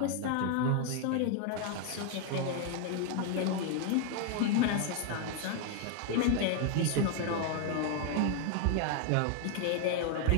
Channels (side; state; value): both; different; correlation 0.00